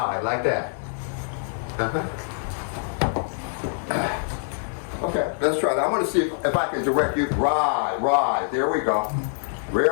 like that. Okay, let's try it. I want to see if I can direct you. Right. There we go.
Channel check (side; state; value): right; silent; digital silence